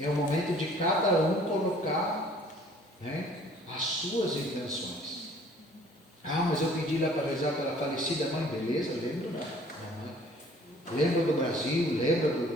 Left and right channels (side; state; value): both; normal; correlation 0.54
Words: o momento de cada um colocar, né, as suas intenções. Ah, mas eu pedi lá para rezar pela falecida mãe, beleza, lembro da mãe. Lembra do Brasil, lembra